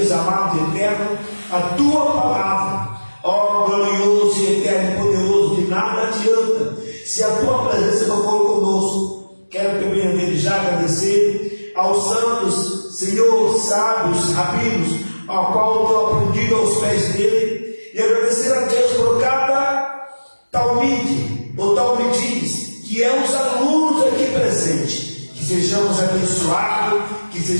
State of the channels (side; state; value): both; inverted; correlation -1.00